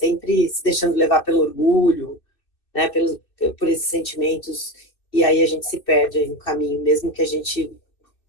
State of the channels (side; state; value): right; late; 2.6 ms